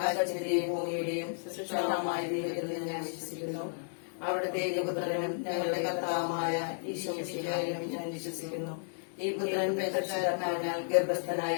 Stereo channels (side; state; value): right; silent; digital silence